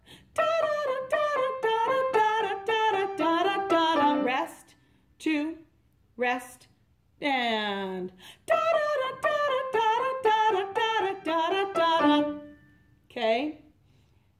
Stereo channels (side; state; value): both; identical; correlation 1.00